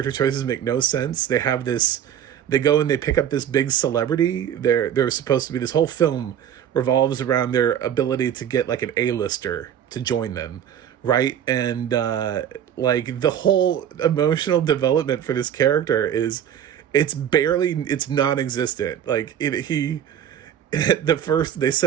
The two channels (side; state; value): left; quieter; 9.6 dB